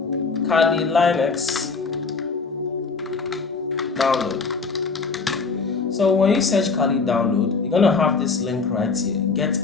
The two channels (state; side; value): quieter; right; 4.6 dB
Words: Kali Linux download. So when you search Kali download, you're gonna have this link right here, Get